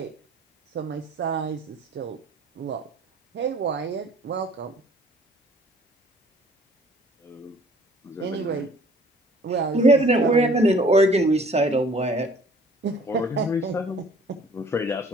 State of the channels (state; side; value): normal; both; correlation 0.54